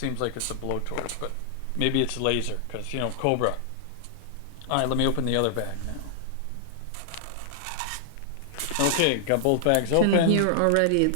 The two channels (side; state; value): both; different; correlation -0.01